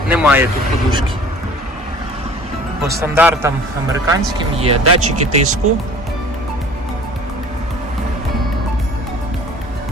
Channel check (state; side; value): normal; both; correlation 0.47